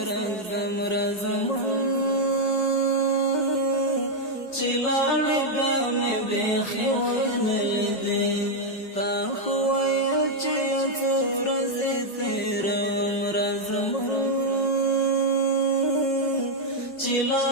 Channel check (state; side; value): late; right; 5.4 ms